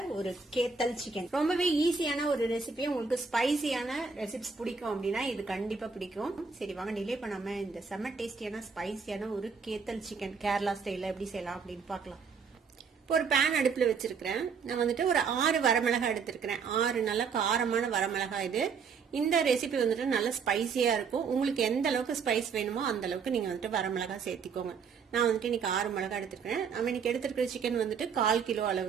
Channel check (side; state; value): left; quieter; 5.6 dB